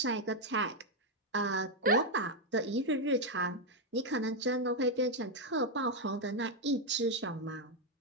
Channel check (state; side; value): normal; both; correlation 0.02